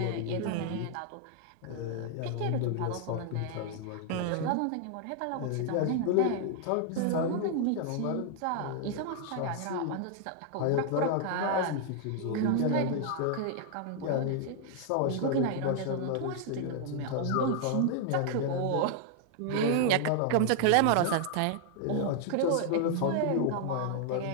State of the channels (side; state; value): both; different; correlation 0.00